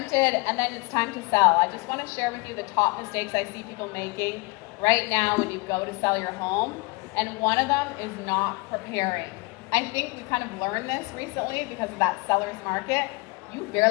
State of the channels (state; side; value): quieter; right; 25.6 dB